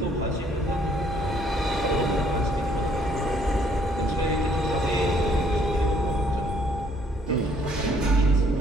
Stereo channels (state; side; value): normal; both; correlation 0.64